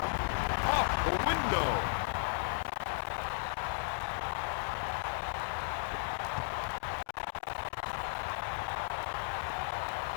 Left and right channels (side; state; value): right; silent; digital silence